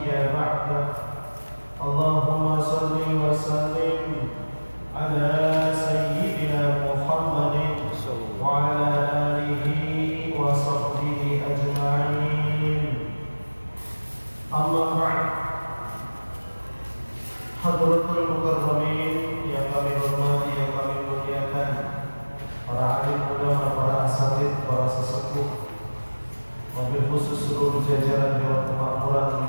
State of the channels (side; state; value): both; inverted; correlation -1.00